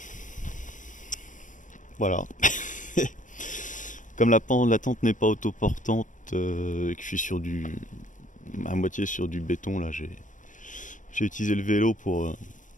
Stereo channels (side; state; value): right; late; 0.37 ms